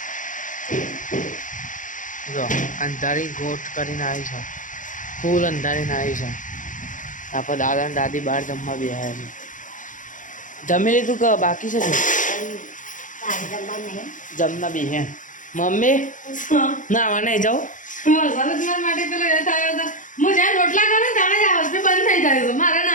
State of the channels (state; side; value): late; right; 0.37 ms